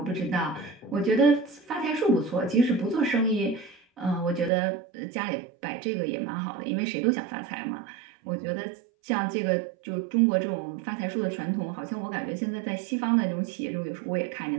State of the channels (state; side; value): drops out; left; at 4.5 s